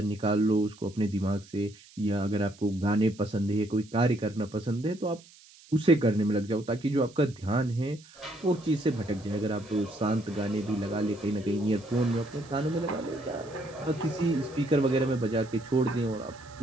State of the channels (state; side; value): noise; right; hiss, 24 dB below the sound